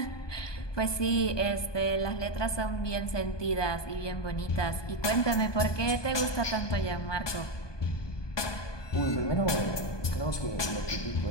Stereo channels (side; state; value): right; late; 1.2 ms